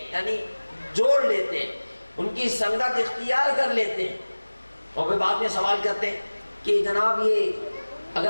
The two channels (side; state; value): both; inverted; correlation -1.00